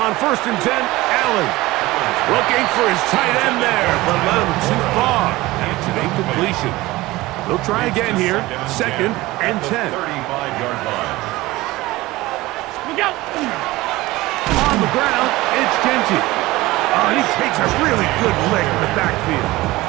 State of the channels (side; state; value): left; quieter; 19.2 dB